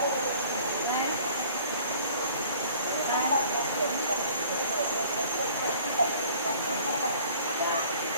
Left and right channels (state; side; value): inverted; both; correlation -0.52